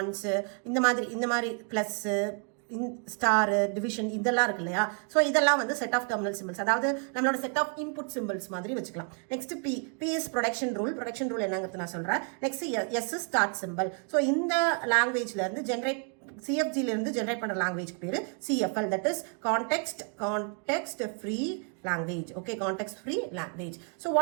இந்த மாதிரி ப்ளஸ், ஸ்டார், டிவிஷன், இதெல்லாம் இருக்கு இல்லையா? ஸோ இதெல்லாம் செட் ஆஃப் டெர்மினல் சிம்பிள்ஸ், அதாவது நம்மளோட செட் ஆஃப் இன்புட் சிம்பிள்ஸ் மாதிரி வச்சுக்கலாம். Next P is production rule. Production rule என்னங்கிறது நான் சொல்றேன். Next S is start simple. So இந்த லாங்குவேஜ்ல இருந்து சிஎஃப்ஜில இருந்து ஜென்ரேட் பண்ற லாங்குவேஜ் பேரு CFL, that is context free language. Okay, context free language. So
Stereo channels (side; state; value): left; quieter; 38.6 dB